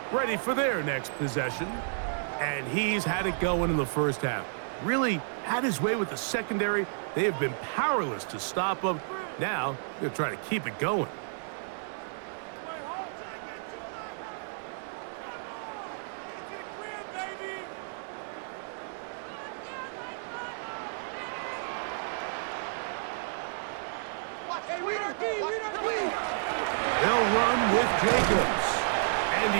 ready for their next possession. And he's had it going in the first half. Really had his way with the secondary. They have been powerless to stop him. Now, they're trying to keep it going. They'll run with Jacobs. And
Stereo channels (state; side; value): silent; left; digital silence